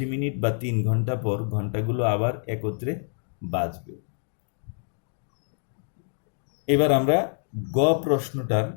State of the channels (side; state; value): right; silent; digital silence